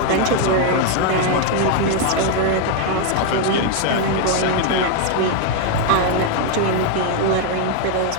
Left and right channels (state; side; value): different; both; correlation 0.00